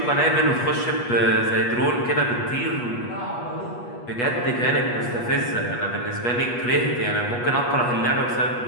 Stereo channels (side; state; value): right; late; 8.3 ms